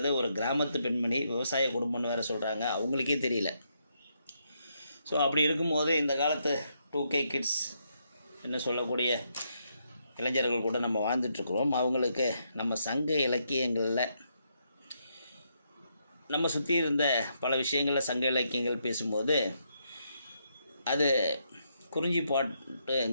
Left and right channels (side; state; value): both; inverted; correlation -0.78